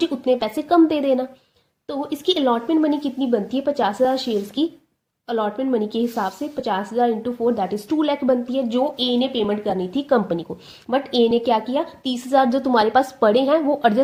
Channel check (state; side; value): identical; both; correlation 1.00